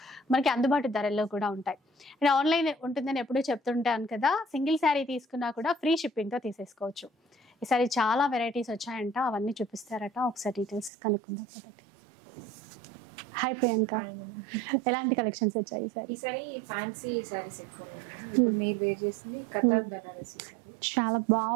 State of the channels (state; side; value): drops out; left; at 10.9 s